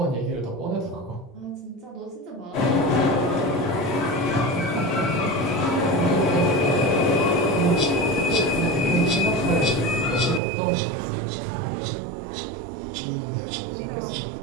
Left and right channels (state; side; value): drops out; left; at 10.4 s